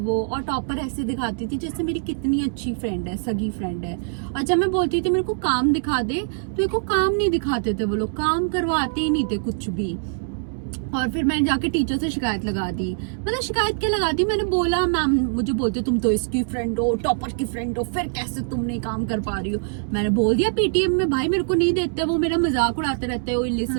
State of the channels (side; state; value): left; silent; 63 dB below the other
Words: और टॉपर ऐसे दिखाती थी जैसे मेरी कितनी अच्छी फ्रेंड है, सगी फ्रेंड है। और जब मैं बोलती थी मेरे को काम दिखा दे तो मेरे को काम नहीं दिखाते थे वो लोग, काम करवाते ही नहीं थे कुछ भी। और फिर मैंने जाके टीचर से शिकायत लगा दी। मतलब शिकायत क्या लगा दी, मैंने बोला मैम मुझे बोलते तुम तो इसकी फ्रेंड हो, टॉपर की फ्रेंड हो, फिर कैसे तुम नहीं काम कर पा रही हो। मैंने बोल दिया पीटीएम में भाई मेरे को नहीं देते, वो मेरा मजाक उड़ाते रहते हैं ओए